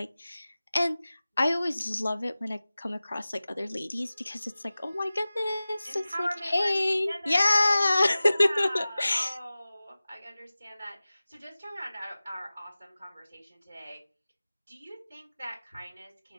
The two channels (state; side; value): inverted; both; correlation -0.97